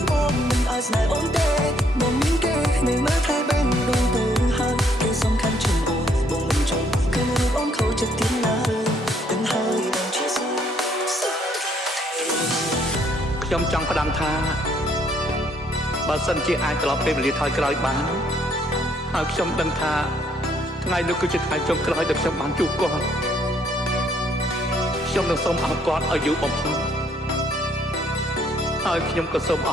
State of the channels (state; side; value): normal; both; correlation 0.67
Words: បងមិនអាចស្នេហ៍អូនទេបងមានគេនៅមើលថែបែបដងទៅហើយគេសំខាន់ជាងបងមិនចង់ឃើញរូបអូនខូចចិត្តទៀតឡើយទាំងហើយបងជាសោកខ្ញុំចង់ផ្ដាំថាបើសិនជាអាចត្រឡប់ពេលវេលាថយក្រោយបានហើយខ្ញុំដឹងថាថ្ងៃនោះគឺជាថ្ងៃចុងក្រោយដែលខ្ញុំបានជួបគាត់ខ្ញុំនឹងសូមអរគាត់ឲ្យយូរបំផុតហើយខ្ញុំក៏សូមអ